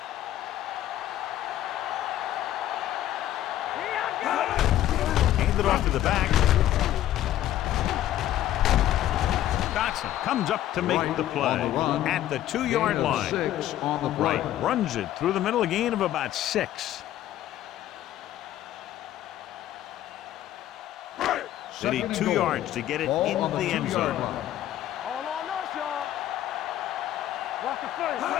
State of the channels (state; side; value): quieter; right; 12.9 dB